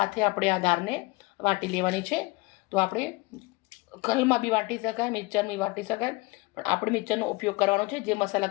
આપણે આ દાળને વાટી લેવાની છે. તો આપણે કલમાં બી વાટી શકાય, મિક્સરમાં બી વાટી શકાય, પણ આપણે મિક્સરનો ઉપયોગ કરવાનો છે. જે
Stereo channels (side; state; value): right; quieter; 24.2 dB